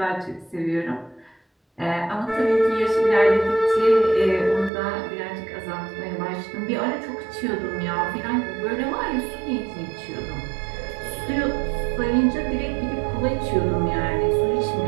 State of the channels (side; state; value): left; drops out; at 4.7 s